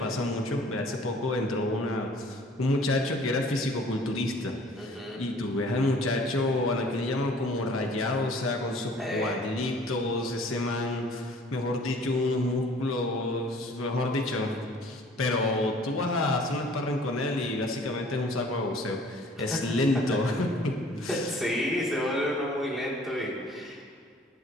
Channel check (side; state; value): both; normal; correlation 0.52